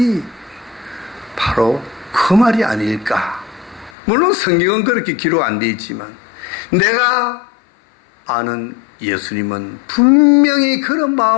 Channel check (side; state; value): right; drops out; at 4.0 s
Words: 바로 그 말이 아닐까. 물론 성경은 그렇게 기록 안 돼 있지만, 내가 아는 예수님은 분명히 그런